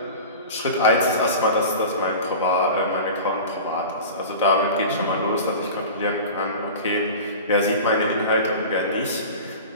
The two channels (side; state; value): both; inverted; correlation -0.34